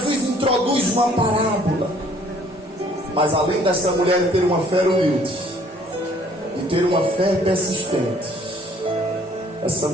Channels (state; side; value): normal; both; correlation 0.59